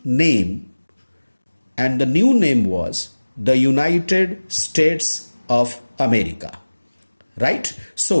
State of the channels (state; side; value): inverted; both; correlation -1.00